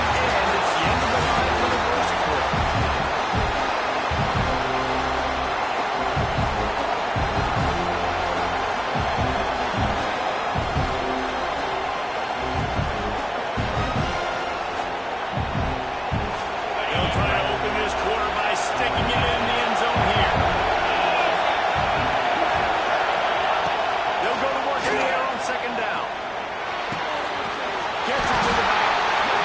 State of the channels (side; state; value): both; identical; correlation 1.00